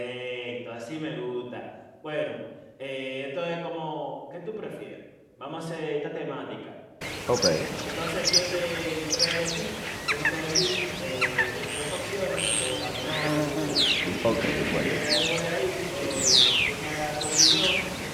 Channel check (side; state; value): both; identical; correlation 1.00